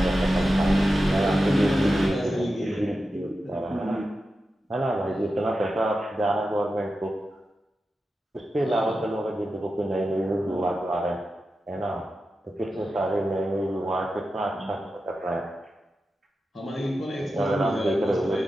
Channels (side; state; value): both; normal; correlation 0.91